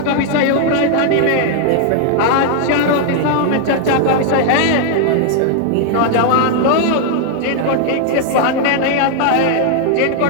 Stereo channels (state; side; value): different; both; correlation 0.00